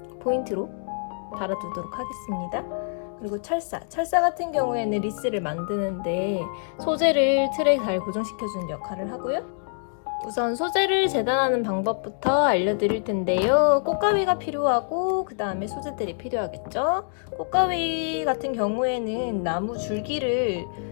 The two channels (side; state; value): right; silent; digital silence